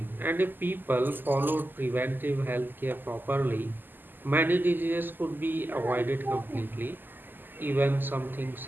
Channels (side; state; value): left; late; 0.091 ms